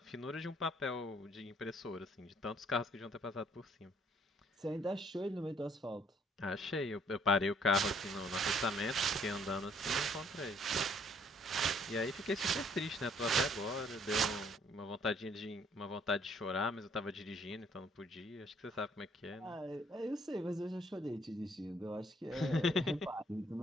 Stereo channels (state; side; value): normal; both; correlation 0.63